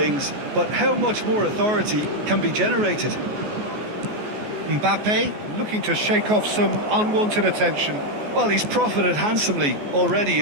but how much more authority can be generated? Mbappe looking to shake off some unwanted attention. Well, he's profited handsomely already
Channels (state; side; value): late; left; 14 ms